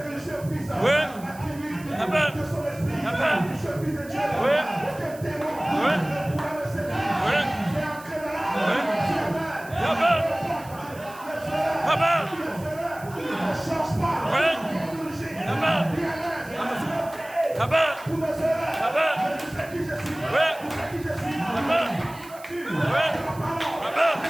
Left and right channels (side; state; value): right; noise; hiss, 20 dB below the sound